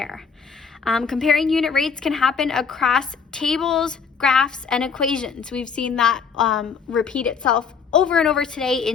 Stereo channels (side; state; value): right; quieter; 5.9 dB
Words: Comparing unit rates can happen across tables, graphs, and equations. We've seen that repeat itself over and over today